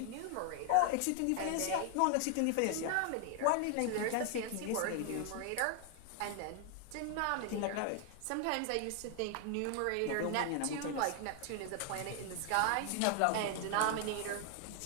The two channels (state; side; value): different; both; correlation 0.00